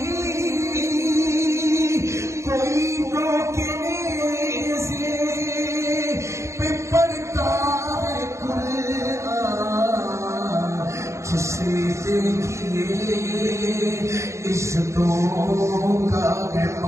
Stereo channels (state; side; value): late; left; 0.14 ms